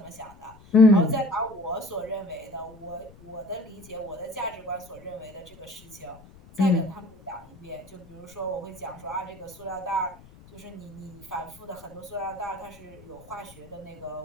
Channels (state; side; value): noise; left; rumble, 22 dB below the sound